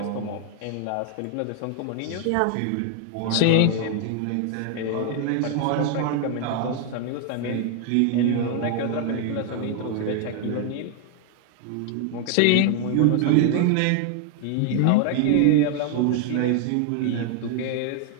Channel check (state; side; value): different; both; correlation 0.00